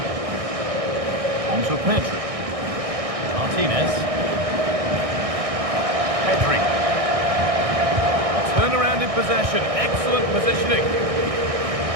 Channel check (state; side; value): late; left; 1.6 ms